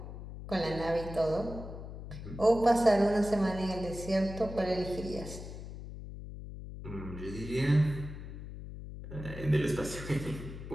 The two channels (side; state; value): left; noise; hum, 10 dB below the sound